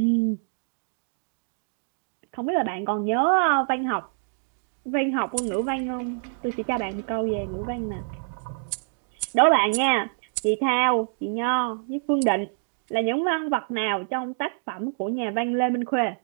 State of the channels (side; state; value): left; silent; digital silence